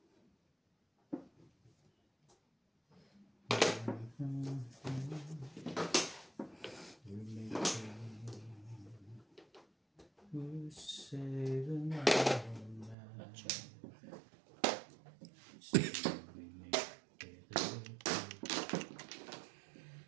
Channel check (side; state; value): left; drops out; at 13.0 s